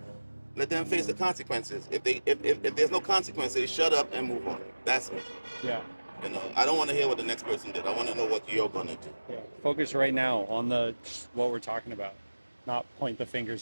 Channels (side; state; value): both; inverted; correlation -1.00